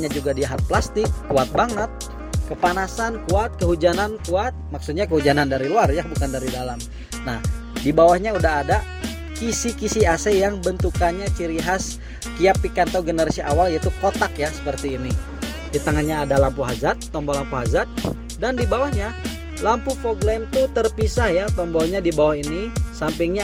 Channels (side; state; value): both; identical; correlation 1.00